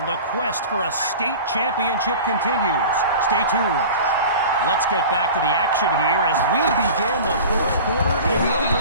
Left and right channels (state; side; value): inverted; both; correlation -0.36